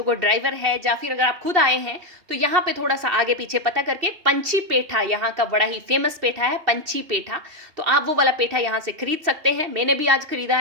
ड्राइवर है या फिर अगर आप खुद आए हैं तो यहाँ पे थोड़ा सा आगे पीछे पता करके पंछी पेठा, यहाँ का बड़ा ही फेमस पेठा है पंछी पेठा, तो आप वो वाला पेठा यहाँ से खरीद सकते हैं। मैंने भी आज खरीदा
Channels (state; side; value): late; left; 2.7 ms